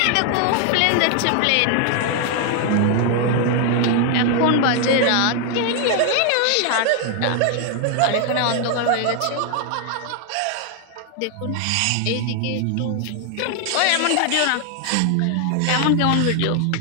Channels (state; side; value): different; both; correlation 0.00